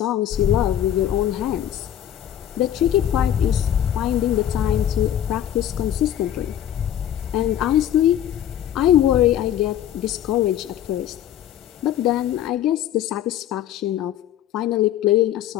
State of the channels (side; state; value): right; quieter; 11.0 dB